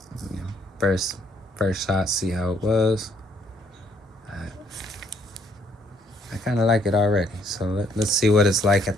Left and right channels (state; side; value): normal; both; correlation 0.67